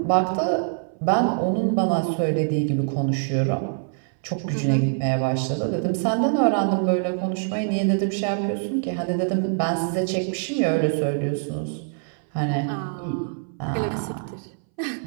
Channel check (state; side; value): silent; left; 60 dB below the other